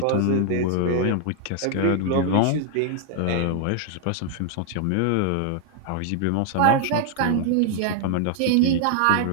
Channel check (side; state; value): both; different; correlation 0.00